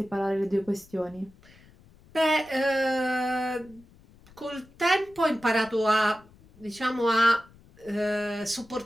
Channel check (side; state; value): left; noise; rumble, 26 dB below the sound